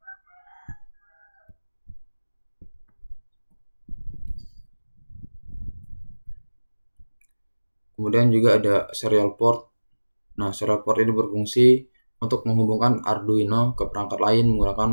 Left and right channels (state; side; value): inverted; both; correlation -1.00